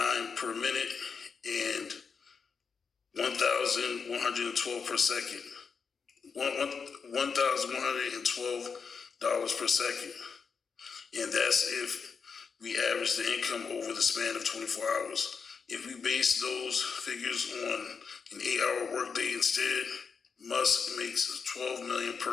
per minute and 1,112 per second. $1,112 per second. And that's if we average the income over the span of 24 hours. If we base those figures on an 8-hour workday instead, Musk makes $12 million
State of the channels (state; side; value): quieter; right; 5.7 dB